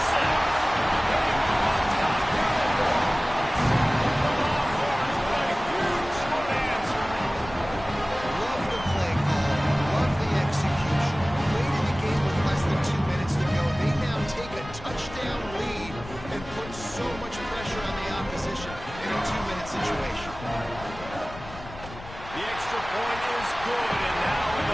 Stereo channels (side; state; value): left; noise; rumble, 14 dB below the sound